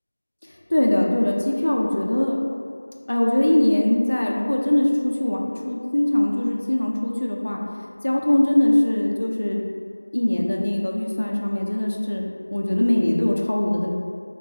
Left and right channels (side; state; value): both; inverted; correlation -1.00